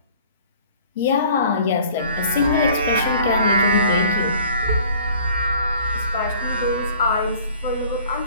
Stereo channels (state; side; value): inverted; both; correlation -0.51